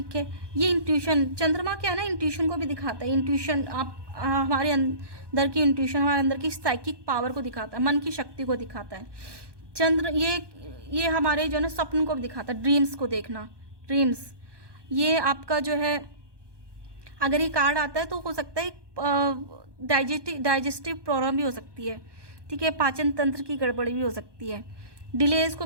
है, ये इंट्यूशन, चंद्रमा क्या है ना, इंट्यूशन को भी दिखाता है। इंट्यूशन आप हमारे अंदर की इंट्यूशन, हमारे अंदर की साइकिक पावर को दिखाता है, मन की शक्ति को दिखाता है। चंद्र ये हमारे जो है ना स्वप्न को भी दिखाता है, ड्रीम्स को देखना, ड्रीम्स। ये आपका जो है, अगर ये कार्ड आता है तो हो सकता है डाइजेस्टिव प्रॉब्लम भी हो सकती है। ठीक है, पाचन तंत्र की गड़बड़ी भी हो सकती है। डिलेज को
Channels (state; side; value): late; left; 1.2 ms